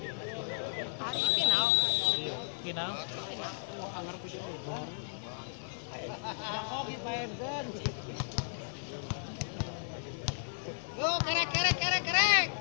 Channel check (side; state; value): right; silent; digital silence